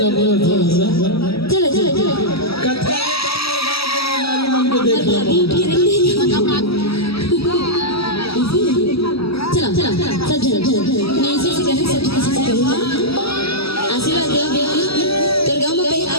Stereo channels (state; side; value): late; right; 0.76 ms